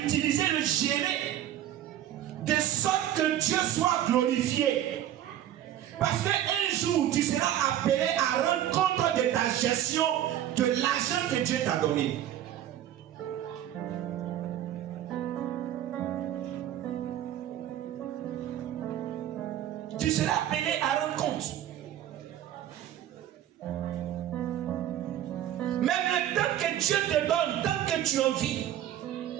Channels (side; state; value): left; quieter; 11.8 dB